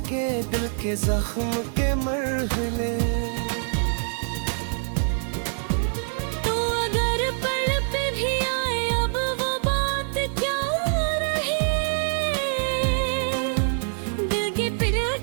दिल के जख्म के मरहले। तो अगर पल पे भी आए अब वो बात क्या रही, दिल की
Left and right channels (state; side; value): silent; left; digital silence